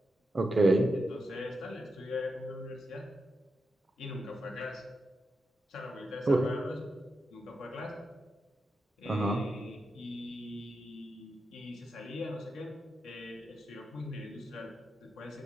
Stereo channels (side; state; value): both; normal; correlation 0.87